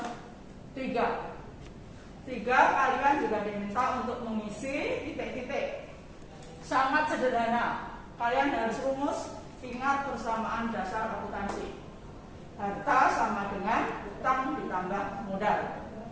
3. Kalian juga diminta untuk mengisi titik-titik. Sangat sederhana. Kalian harus rumus. Ingat persamaan dasar akuntansi. Harta sama dengan utang ditambah modal.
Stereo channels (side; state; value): both; identical; correlation 1.00